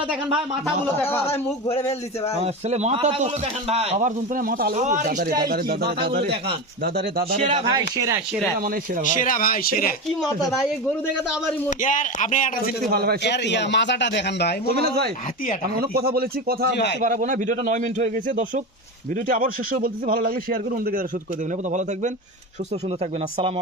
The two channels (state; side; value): normal; both; correlation 0.21